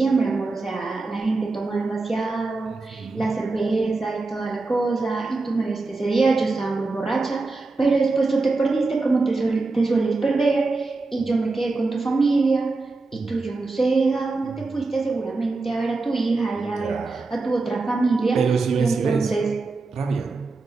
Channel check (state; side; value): quieter; left; 3.6 dB